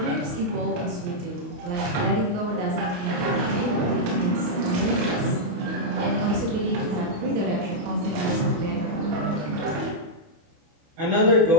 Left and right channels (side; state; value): left; late; 28 ms